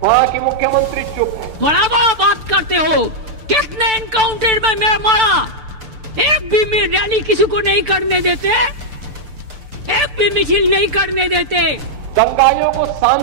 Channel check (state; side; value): late; left; 6.8 ms